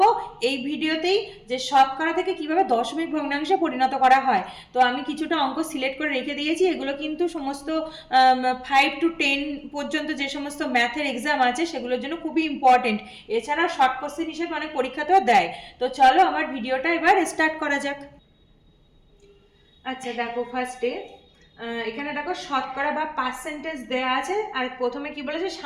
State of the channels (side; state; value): both; identical; correlation 1.00